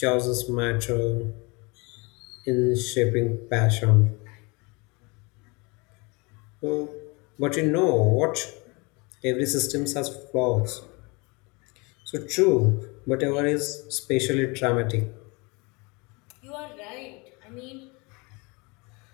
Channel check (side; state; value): right; quieter; 28.1 dB